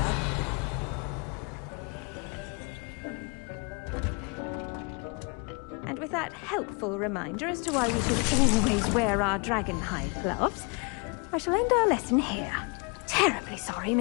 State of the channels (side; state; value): right; quieter; 32.8 dB